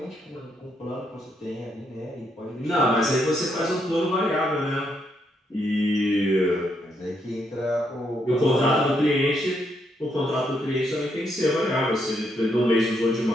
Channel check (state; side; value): normal; both; correlation 0.76